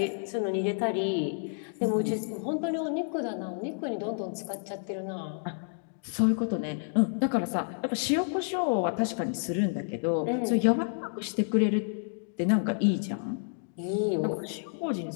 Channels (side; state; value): right; silent; digital silence